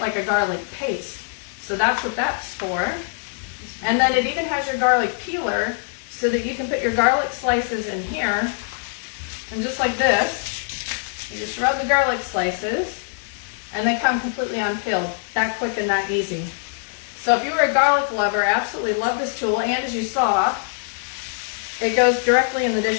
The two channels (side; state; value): right; silent; digital silence